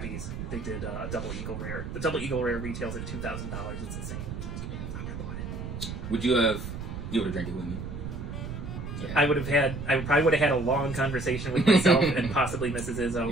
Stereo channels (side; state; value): right; noise; rumble, 7 dB below the sound